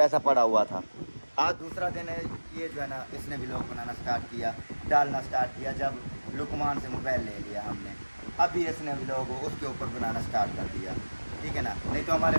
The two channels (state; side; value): inverted; both; correlation -1.00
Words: पड़ा हुआ था। आज दूसरा दिन है, ये जो है ना इसने व्लॉग बनाना स्टार्ट किया, डालना स्टार्ट किया, जब लुकमान से मोबाइल ले लिया हमने, अभी इसने व्लॉग उसके ऊपर बनाना स्टार्ट कर दिया, ठीक है ना, नहीं तो हमारे